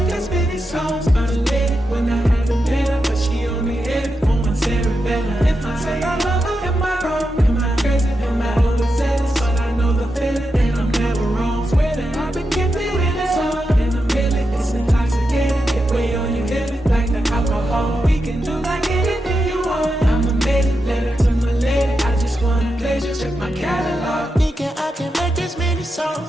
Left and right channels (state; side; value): normal; both; correlation 0.87